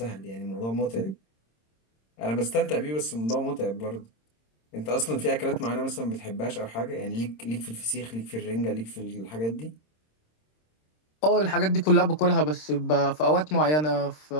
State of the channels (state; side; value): late; right; 26 ms